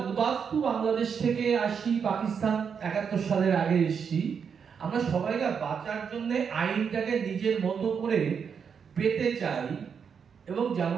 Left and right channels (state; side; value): quieter; left; 6.7 dB